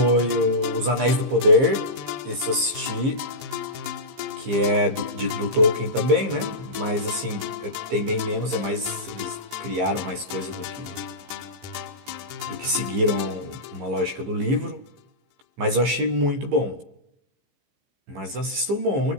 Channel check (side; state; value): left; late; 15 ms